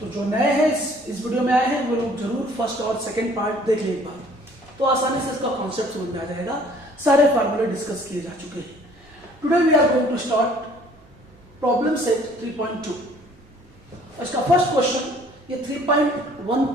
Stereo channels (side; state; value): right; noise; hum, 28 dB below the sound